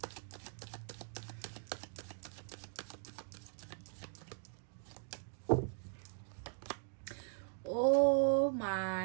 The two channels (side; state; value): left; silent; digital silence